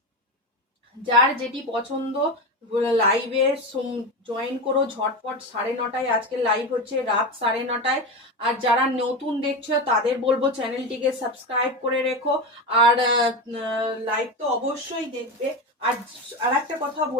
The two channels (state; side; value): normal; both; correlation 0.20